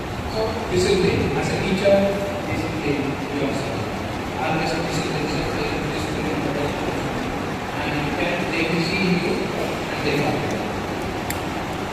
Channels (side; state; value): both; identical; correlation 1.00